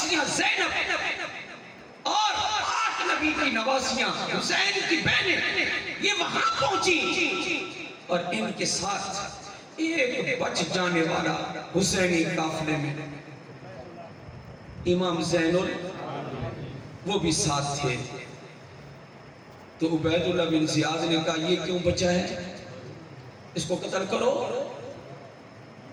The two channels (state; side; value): identical; both; correlation 1.00